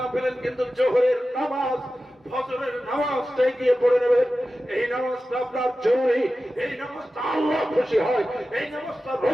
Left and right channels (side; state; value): both; normal; correlation 0.94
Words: পেলেন, কিন্তু জোহরের নামাজ ফজরের নামাজটাই গিয়ে পড়ে নেবেন। এই নামাজটা আপনার জরুরি, এই নামাজটা আল্লাহ খুশি হয়, এই নামাজটা